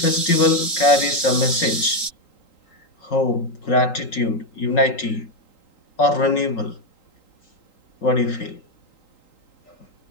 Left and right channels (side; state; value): right; late; 3.8 ms